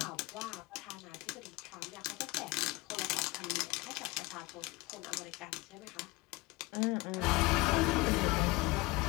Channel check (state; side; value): quieter; right; 21.9 dB